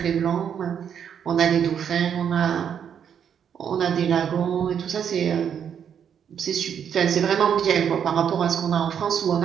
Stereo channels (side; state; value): left; quieter; 8.2 dB